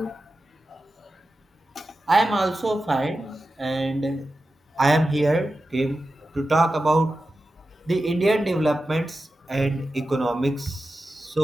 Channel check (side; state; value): both; normal; correlation 0.92